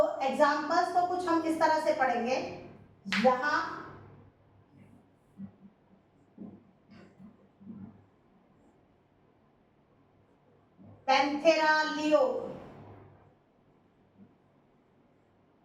एग्जांपल्स को कुछ हम इस तरह से पढ़ेंगे। यहाँ Panthera leo,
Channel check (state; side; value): identical; both; correlation 1.00